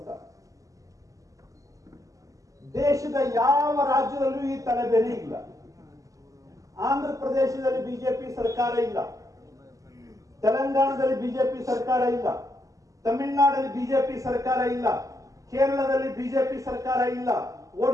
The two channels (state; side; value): late; left; 0.16 ms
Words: ದೇಶದ ಯಾವ ರಾಜ್ಯದಲ್ಲೂ ಈ ತಲೆಬೇನೆ ಇಲ್ಲ. ಆಂಧ್ರ ಪ್ರದೇಶದಲ್ಲಿ ಬಿಜೆಪಿ ಸರ್ಕಾರ ಇಲ್ಲ, ತೆಲಂಗಾಣದಲ್ಲಿ ಬಿಜೆಪಿ ಸರ್ಕಾರ ಇಲ್ಲ, ತಮಿಳುನಾಡಲ್ಲಿ ಬಿಜೆಪಿ ಸರ್ಕಾರ ಇಲ್ಲ, ಕೇರಳದಲ್ಲಿ ಬಿಜೆಪಿ ಸರ್ಕಾರ ಇಲ್ಲ,